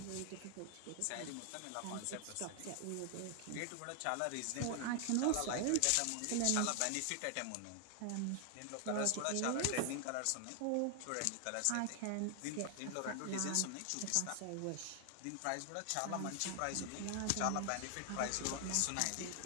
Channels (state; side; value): different; both; correlation 0.00